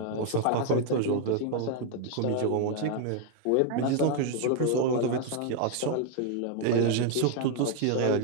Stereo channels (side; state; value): both; different; correlation 0.00